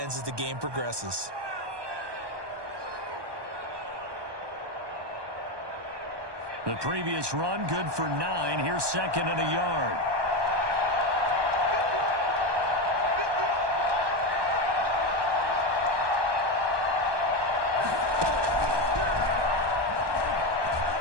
as the game progresses. The previous run good for 9. Here's second and a yard.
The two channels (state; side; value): late; left; 1.2 ms